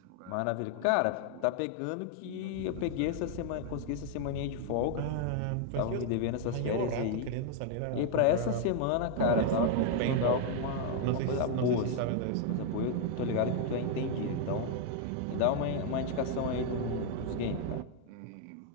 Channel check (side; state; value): both; different; correlation 0.00